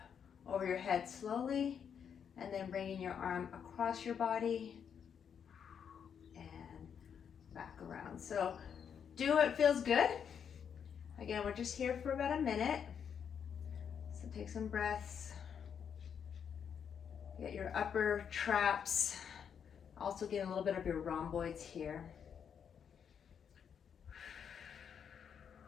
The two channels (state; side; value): quieter; right; 7.6 dB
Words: over your head slowly, and then bringing your arm across your body and back around. So do what feels good. Again, we're just here for about a minute. So take some breaths. Get your upper traps. Also get a little bit of your rhomboids here.